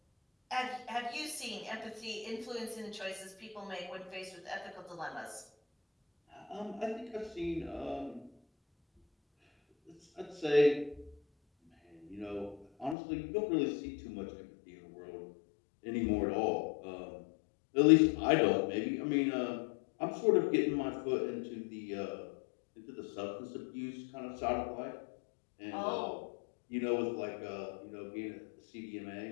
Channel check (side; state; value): right; drops out; at 13.0 s